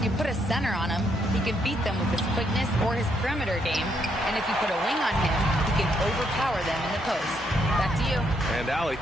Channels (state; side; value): normal; both; correlation 0.75